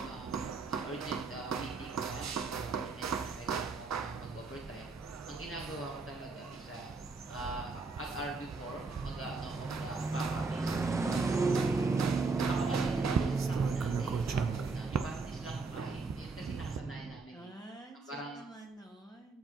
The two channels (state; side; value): quieter; left; 4.1 dB